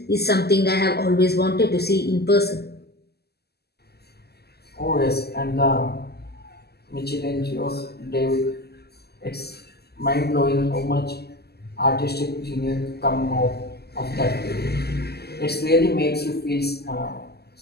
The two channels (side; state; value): right; late; 0.46 ms